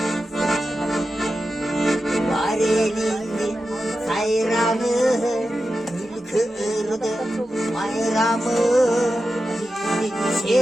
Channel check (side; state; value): both; normal; correlation 0.91